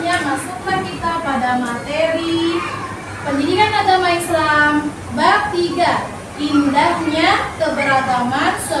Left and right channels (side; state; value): both; identical; correlation 1.00